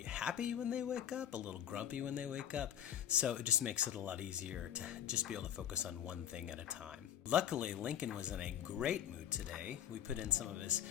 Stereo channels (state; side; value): quieter; right; 10.1 dB